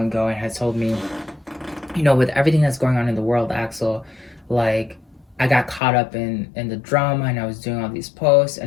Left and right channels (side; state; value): right; drops out; at 5.8 s